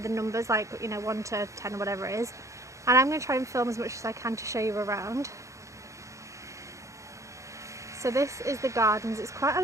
numbers, like, you know, 1 to 10 or whatever it is. And I'm going to try and film as much as I can to show you around. So this is the gardens. It's quite a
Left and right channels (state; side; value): late; left; 0.15 ms